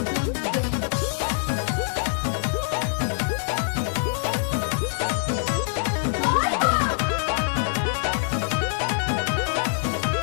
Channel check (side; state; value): right; silent; digital silence